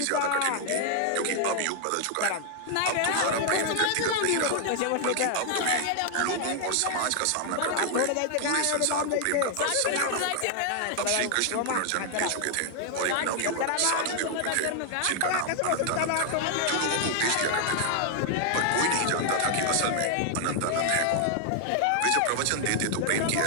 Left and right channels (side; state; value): both; different; correlation 0.00